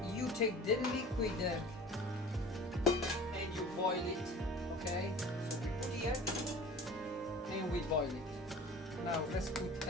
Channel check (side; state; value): both; normal; correlation 0.42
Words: You take the liquid and you boil it. Okay. So we put here and we boil it. Now let's put